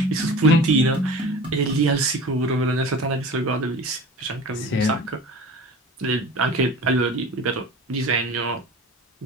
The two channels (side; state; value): both; normal; correlation 0.38